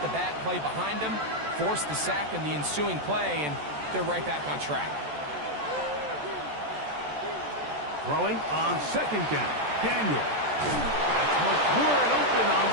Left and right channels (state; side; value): late; left; 14 ms